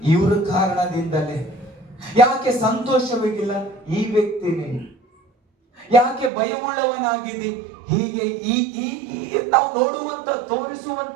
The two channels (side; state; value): left; drops out; at 6.3 s